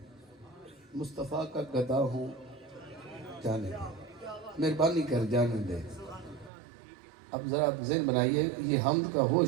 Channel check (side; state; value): left; drops out; at 6.5 s